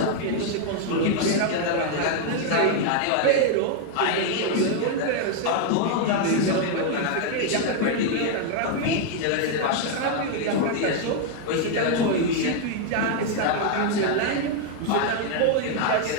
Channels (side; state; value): both; different; correlation 0.00